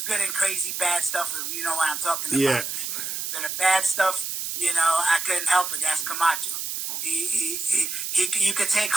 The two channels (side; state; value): right; noise; hiss, 4 dB below the sound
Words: and crazy bad stuff, if you know what I'm talking about. Yeah. The bad stuff, I couldn't help it. That's Camacho. You could take